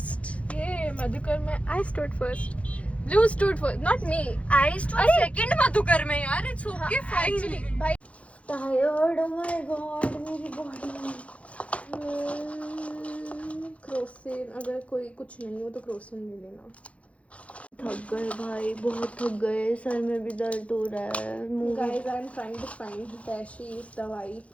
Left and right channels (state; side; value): late; right; 0.063 ms